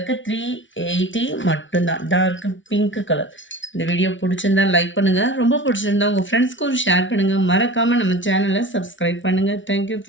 380 மட்டும்தான். Dark pink colour. இந்த வீடியோ பிடிச்சிருந்தா லைக் பண்ணுங்கள். ரொம்ப பிடிச்சிருந்தா உங்கள் ஃப்ரெண்ட்ஸ்க்கும் ஷேர் பண்ணுங்கள். மறக்காமல் நம்ம சேனலை சப்ஸ்கிரைப் பண்ணுங்கள். Thank you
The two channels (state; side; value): late; right; 0.56 ms